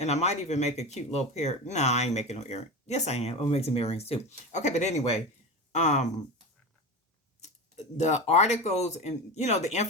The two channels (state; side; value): normal; both; correlation 0.26